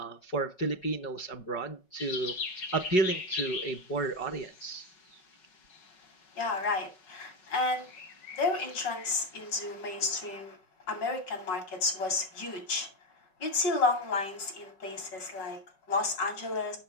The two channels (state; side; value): late; right; 5.4 ms